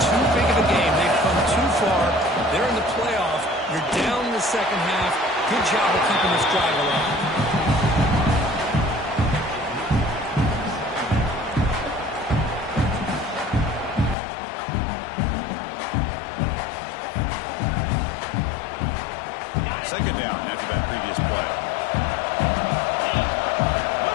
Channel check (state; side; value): drops out; right; at 14.2 s